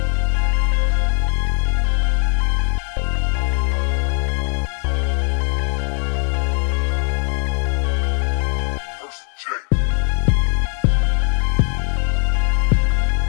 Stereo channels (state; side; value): quieter; right; 39.2 dB